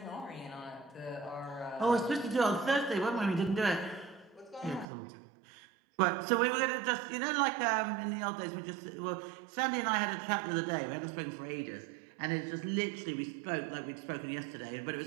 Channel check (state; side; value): drops out; left; at 4.9 s